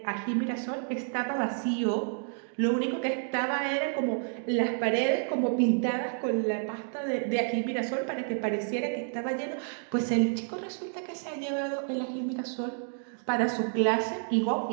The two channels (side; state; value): left; silent; 57 dB below the other